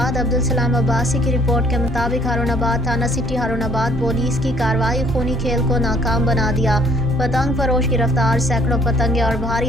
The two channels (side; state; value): both; normal; correlation 0.60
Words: अब्दुल सलाम अब्बासी की रिपोर्ट के मुताबिक हारूनाबाद थाना सिटी हारूनाबाद पुलिस की कार्रवाई खूनी खेल को नाकाम बना दिया। पतंग फरोश गिरफ्तार, सैकड़ों पतंगे और